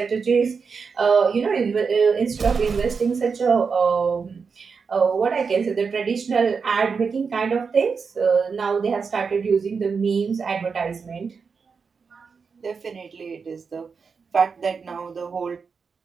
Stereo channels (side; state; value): left; quieter; 5.4 dB